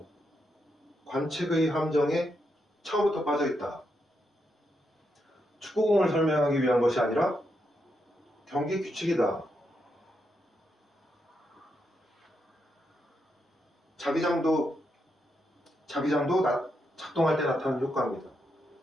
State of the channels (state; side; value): normal; both; correlation 0.82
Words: 관측의 함정에 처음부터 빠져있다. 축구공을 설명하기 위한 것이 아니라 경기 규칙이다. 자기장도 작동할 때 나타나는 효과입니다.